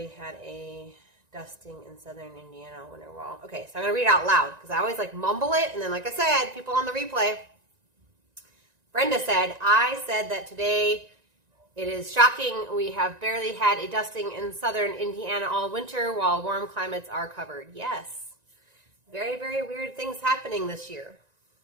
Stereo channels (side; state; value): left; late; 1.9 ms